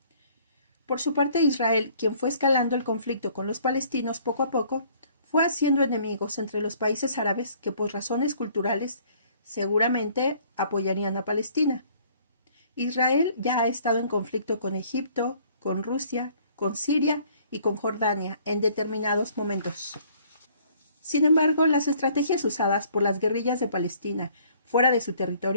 Por su parte, Israel, quien fue escalando el conflicto con los palestinos poco a poco, fue haciendo enemigos entre los países árabes que por razones culturales seguramente apoyarían a Palestina. Israel ya ha estado en conflicto con Egipto, con Rusia, con Siria y con Jordania en determinados momentos. Sin embargo, las estrategias usadas por las guerrillas de Palestina fuera de su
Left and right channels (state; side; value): inverted; both; correlation -0.59